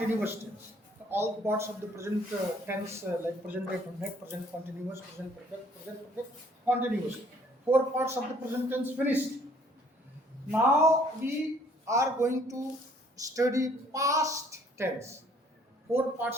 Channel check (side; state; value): both; normal; correlation 0.61